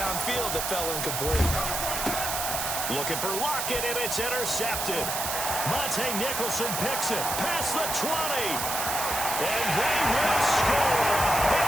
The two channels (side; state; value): right; noise; hiss, 2 dB below the sound